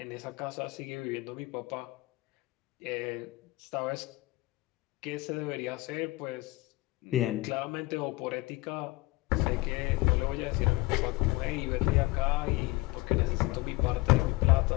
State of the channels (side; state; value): right; quieter; 21.0 dB